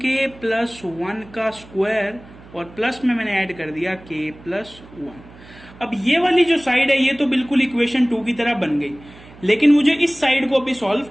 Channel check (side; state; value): right; noise; hum, 21 dB below the sound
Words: + 1 का स्क्वायर, और प्लस में मैंने ऐड कर दिया k + 1। अब ये वाली जो साइड है ये तो बिल्कुल इक्वेशन 2 की तरह बन गई, लेकिन मुझे इस साइड को अभी सॉल्व